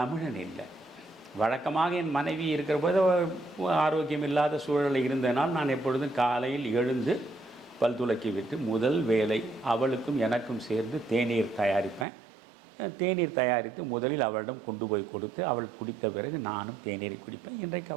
இல்லை. வழக்கமாக என் மனைவி இருக்கிற போது ஆரோக்கியம் இல்லாத சூழலில் இருந்தனால் நான் எப்பொழுதும் காலையில் எழுந்து பல் துலக்கி விட்டு முதல் வேலை அவளுக்கும் எனக்கும் சேர்ந்து தேநீர் தயாரிப்பேன். தேநீர் தயாரித்து முதலில் அவளிடம் கொண்டு போய் கொடுத்து அவள் குடித்த பிறகு நானும் தேநீரை குடிப்பேன். இன்றைக்கு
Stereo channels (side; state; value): left; drops out; at 12.1 s